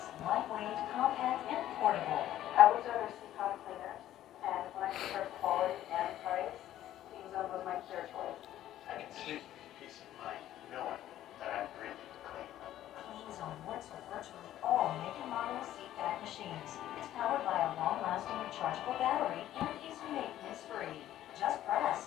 lightweight, compact, and portable. I was under CPAP cleaner, and when I compared quality and price, Clean Zone was my clear choice. I can sleep with peace of mind knowing that I'm breathing clean. Clean Zone works with virtually all make and model CPAP machines. It's powered by a long-lasting rechargeable battery and is maintenance-free. Just press,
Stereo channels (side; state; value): right; quieter; 12.8 dB